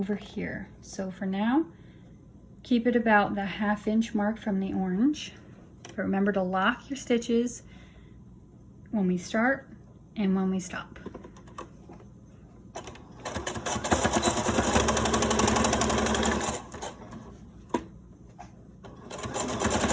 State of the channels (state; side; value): identical; both; correlation 1.00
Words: here. So for now, keep it about the 1/2 inch mark from the orange. But remember to lock your stitches when we start and when we stop.